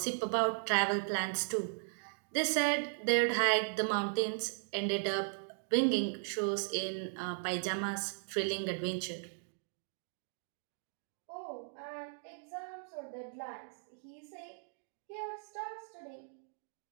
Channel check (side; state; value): left; silent; digital silence